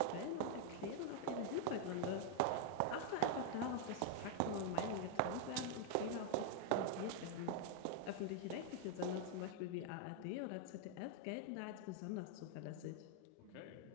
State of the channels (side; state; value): both; different; correlation 0.00